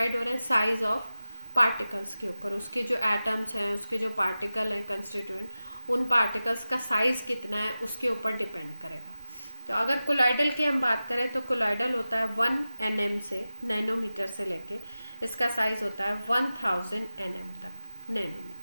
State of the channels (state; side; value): inverted; both; correlation -0.95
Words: हो रहे हैं साइज ऑफ पार्टिकल्स के ऊपर, उसके जो एटम्स हैं, उसके जो पार्टिकल हैं कंस्टिट्यूएंट, उन पार्टिकल्स का साइज कितना है उसके ऊपर डिपेंड करेगा। तो अगर कोलॉइडल की हम बात करें तो कोलॉइडल होता है 1 nm से, नैनोमीटर से लेके इसका साइज होता है 1000 nm तक,